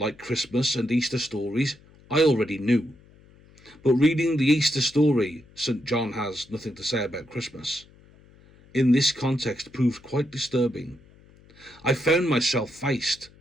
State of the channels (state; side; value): noise; left; hum, 26 dB below the sound